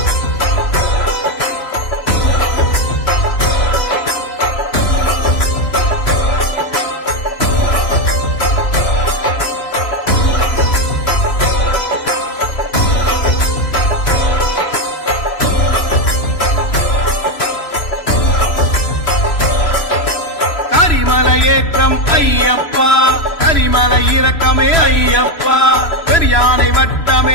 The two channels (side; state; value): right; late; 3.0 ms